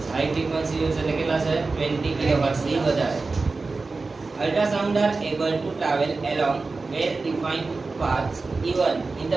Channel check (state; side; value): quieter; left; 3.9 dB